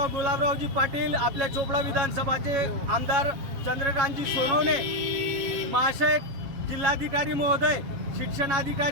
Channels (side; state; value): left; late; 7.4 ms